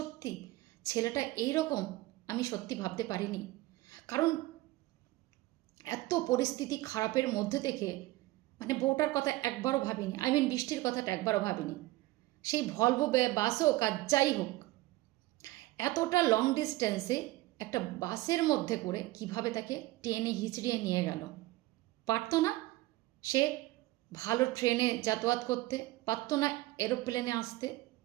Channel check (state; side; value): quieter; left; 18.8 dB